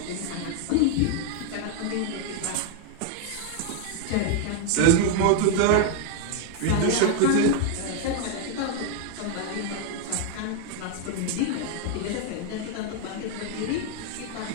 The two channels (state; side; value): different; both; correlation 0.01